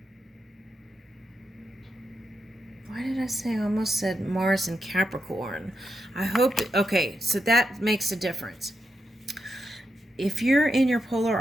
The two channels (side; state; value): both; normal; correlation 0.85